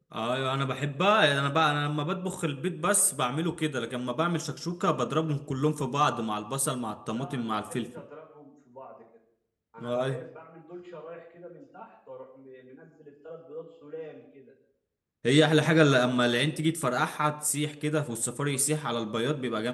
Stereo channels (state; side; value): identical; both; correlation 1.00